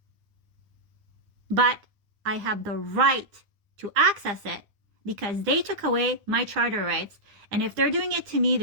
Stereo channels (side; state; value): left; late; 9.8 ms